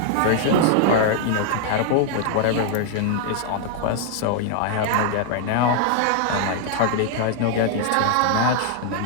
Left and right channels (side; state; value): both; different; correlation 0.00